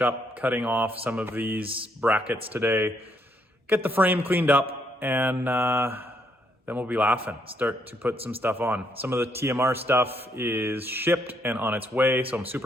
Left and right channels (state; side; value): normal; both; correlation 0.74